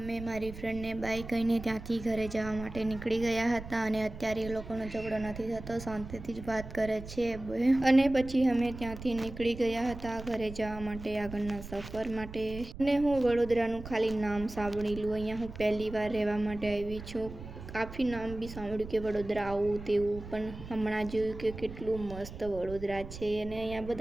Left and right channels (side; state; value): right; noise; rumble, 12 dB below the sound